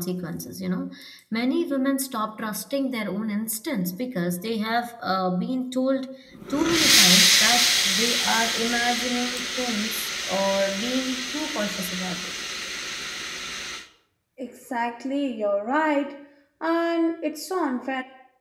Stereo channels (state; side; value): identical; both; correlation 1.00